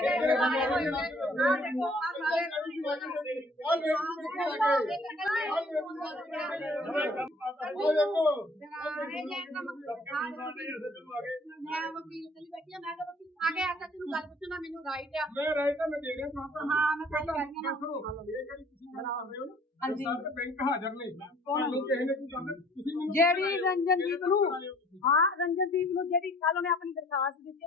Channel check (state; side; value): normal; both; correlation 0.55